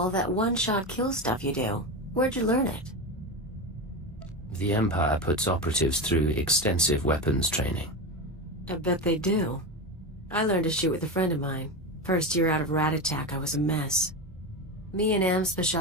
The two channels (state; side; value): normal; both; correlation 0.19